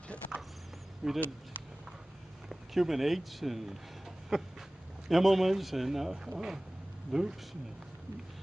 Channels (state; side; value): normal; both; correlation 0.98